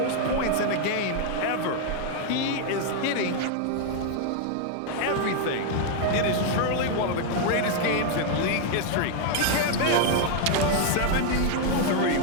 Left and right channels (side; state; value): both; different; correlation 0.00